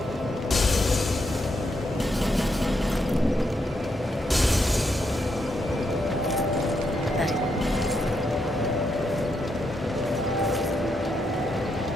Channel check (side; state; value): both; normal; correlation 0.80